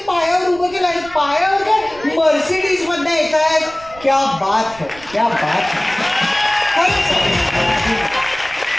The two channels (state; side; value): noise; right; rumble, 21 dB below the sound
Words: पायावर उभं केलं आणि पायावर काय मर्सिडीज मधनं येत आहेत. क्या बात है, क्या बात है.